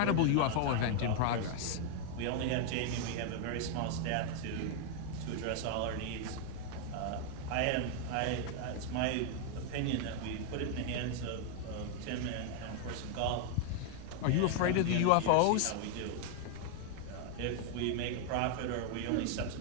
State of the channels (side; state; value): both; different; correlation 0.00